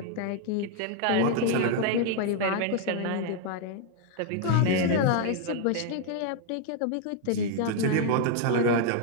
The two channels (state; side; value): different; both; correlation 0.00